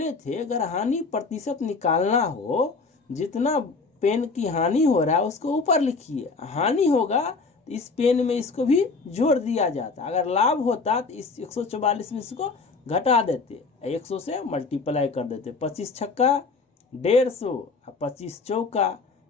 थे अगर हानि प्रतिशत निकालना हो, जितना पेन की हानि हो रहा है उसको ऊपर लिखिए, हानि होगा तो इस पेन में इसको भी जोड़ दिया जाता। अगर लाभ होता तो इस 144 में इसको घटा देते, 100 से मल्टीप्लाई कर देते। 25 छक्का 150 और 25 चौका,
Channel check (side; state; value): right; quieter; 4.3 dB